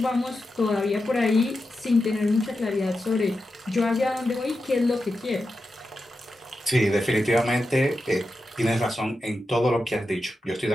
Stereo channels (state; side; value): normal; both; correlation 0.89